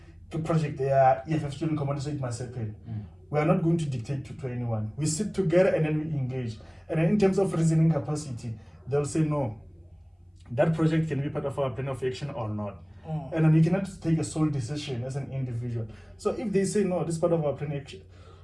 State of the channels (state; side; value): identical; both; correlation 1.00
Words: to project the EFF Student Command so it must happen. We are not going to dictate to anyone. We sit together and then we engage. And in terms of reasoning capacity, they'll say no. That project can be part of our plan of action or not. And then you cannot take a sole decision as an individual. So if they say no, this is part of our plan of action.